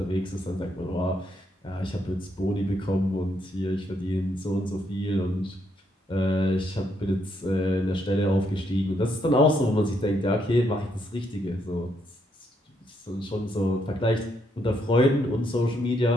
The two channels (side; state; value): both; normal; correlation 0.75